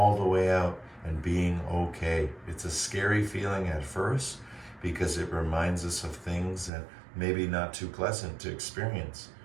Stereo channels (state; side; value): drops out; left; at 6.7 s